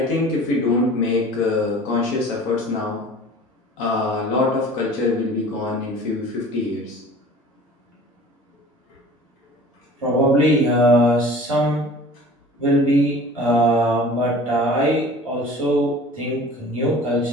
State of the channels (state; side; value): normal; both; correlation 0.44